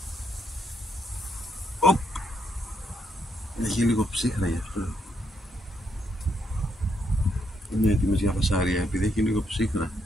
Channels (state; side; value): normal; both; correlation 0.77